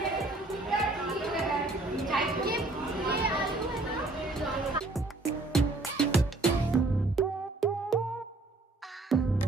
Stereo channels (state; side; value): quieter; left; 3.0 dB